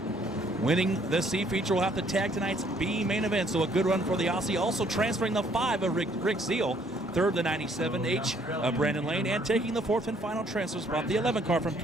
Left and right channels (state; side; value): normal; both; correlation 0.64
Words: winning the C feature will have to tag tonight's B main event. So a good run for the Aussie. Also transferring the 5 of Rick Zeal. Third, the 97H of Brandon Lane. And taking the 4th and final transfer spot, the 11 car from